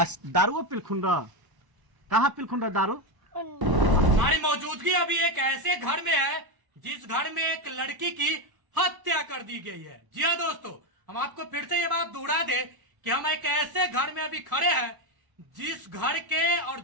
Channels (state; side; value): late; left; 1.0 ms